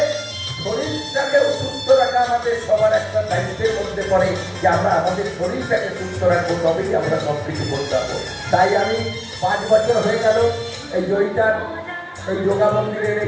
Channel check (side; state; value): both; identical; correlation 1.00